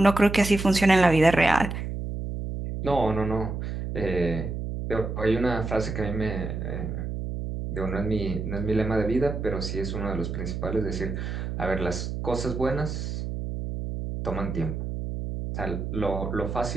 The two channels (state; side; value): noise; right; hum, 5 dB below the sound